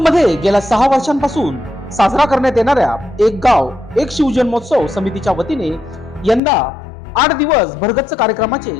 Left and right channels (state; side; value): drops out; right; at 6.4 s